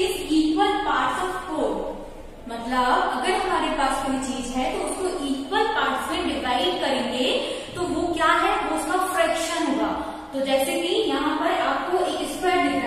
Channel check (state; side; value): identical; both; correlation 1.00